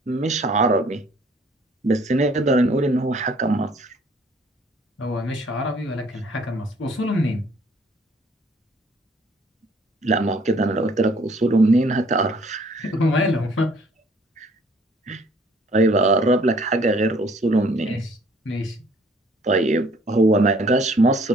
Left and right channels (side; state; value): both; normal; correlation 0.59